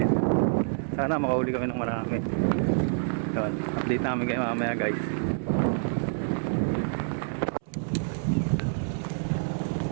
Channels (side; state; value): left; silent; 60 dB below the other